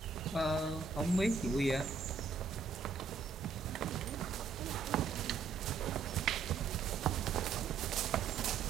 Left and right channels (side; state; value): left; quieter; 5.2 dB